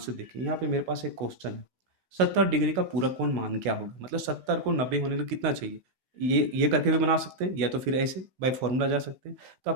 देखिए यहाँ पे मेरे पास एक क्वेश्चन है 70 डिग्री का पूरक कोण मान क्या होगा। मतलब 70 को 90 होने के लिए कितना चाहिए। ये करके भी बना सकते हैं या तो फिर ऐसे बाय फॉर्मूला जा सकते हैं। तो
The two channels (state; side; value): late; left; 16 ms